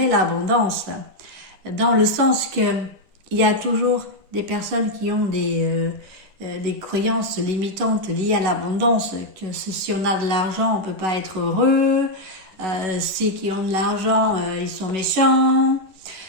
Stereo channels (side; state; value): left; late; 11 ms